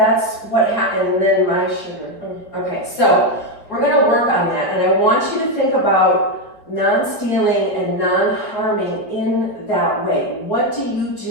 what happened. And then my sugar. Okay, so we're going to work on that. And I want you to think about non-stealing and non-harming in that way. What do you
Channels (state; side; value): late; right; 5.1 ms